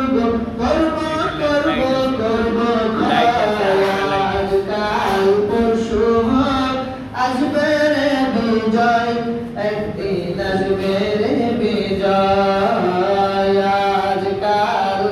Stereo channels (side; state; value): both; identical; correlation 1.00